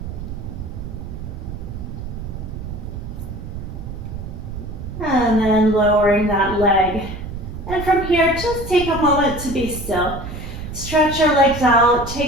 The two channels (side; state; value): right; noise; rumble, 8 dB below the sound